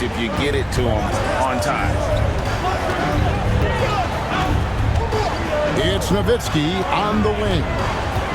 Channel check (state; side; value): identical; both; correlation 1.00